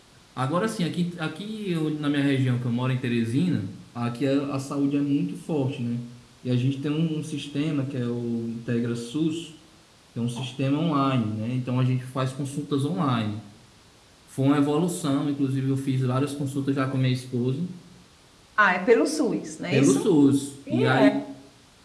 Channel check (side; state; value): both; identical; correlation 1.00